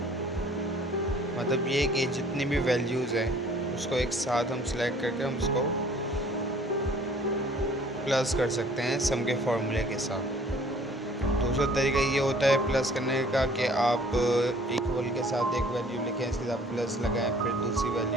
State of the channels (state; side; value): normal; both; correlation 0.54